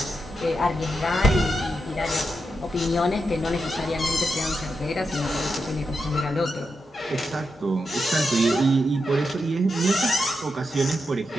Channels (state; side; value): normal; both; correlation 0.86